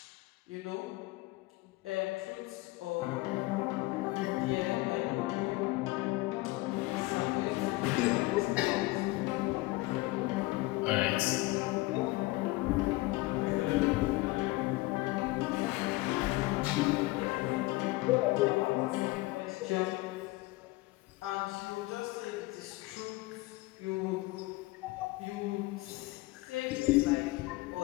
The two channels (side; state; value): right; quieter; 21.2 dB